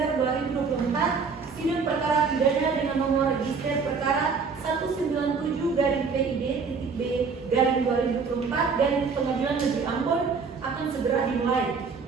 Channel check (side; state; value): left; quieter; 5.2 dB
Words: 2024, sidang perkara pidana dengan nomor register perkara 197-PID-B-2024 Pengadilan Negeri Ambon akan segera dimulai.